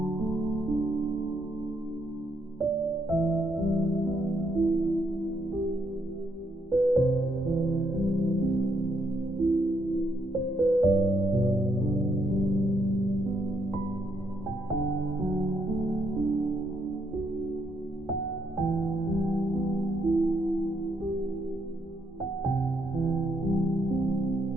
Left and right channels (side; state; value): both; normal; correlation 0.75